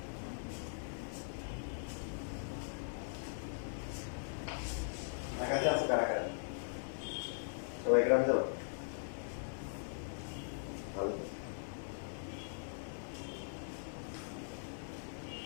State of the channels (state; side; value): silent; right; 51 dB below the other